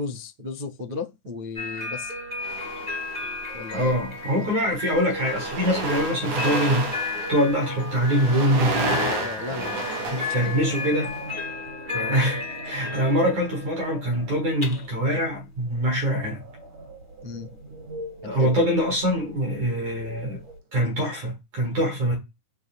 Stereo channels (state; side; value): late; left; 9.6 ms